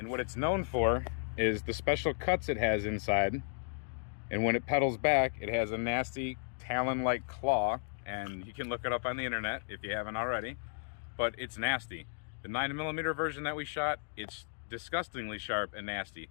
what it's known for is the special cuts it has inside, and when it pedals back, it has a nasty talon-like claw, and you can look it up on the internet if you haven't already, but it's nasty. The 9mm version that we shot, it's disgustingly sharp and nasty.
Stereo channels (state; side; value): silent; right; digital silence